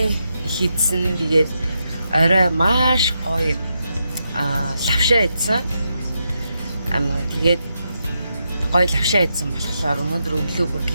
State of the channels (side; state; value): both; inverted; correlation -0.84